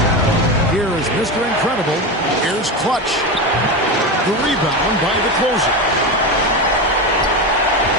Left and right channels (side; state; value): both; normal; correlation 0.19